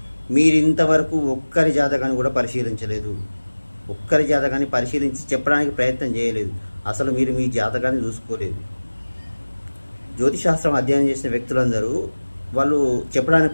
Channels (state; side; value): inverted; both; correlation -1.00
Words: మీరు ఇంతవరకు ఒక్కరి జాతకాన్ని కూడా పరిశీలించలేదు. ఒక్కరి జాతకాన్ని పరిశీలించి చెప్పడానికి ప్రయత్నం చేయలేదు. అసలు మీరు మీ జాతకాన్ని చూసుకోలేదు. జ్యోతిశాస్త్రం అధ్యయనం చేసిన వ్యక్తులందరూ వాళ్ళు చెప్పడానికి